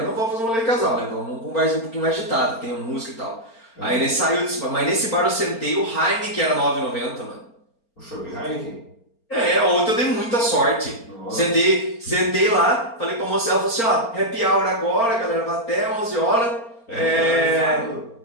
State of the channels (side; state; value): right; late; 4.4 ms